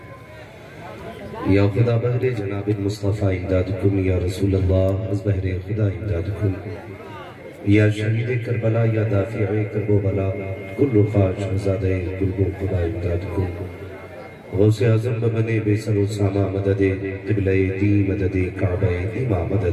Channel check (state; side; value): identical; both; correlation 1.00